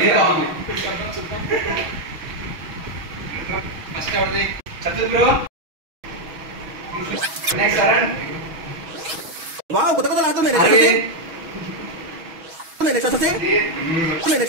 బాగుంది. First ఎవరిది? చతుర్ bro. Next అరణ్. Wow కొత్త కొత్త లాడుతుంది. Next వచ్చేసి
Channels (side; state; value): left; late; 6.2 ms